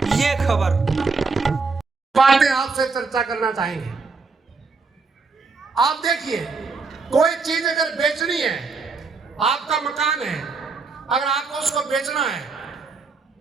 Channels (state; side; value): quieter; left; 4.4 dB